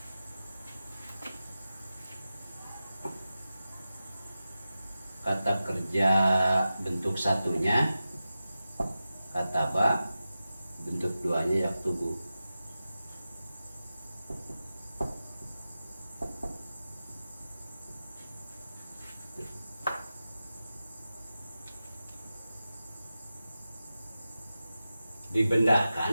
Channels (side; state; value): both; inverted; correlation -0.93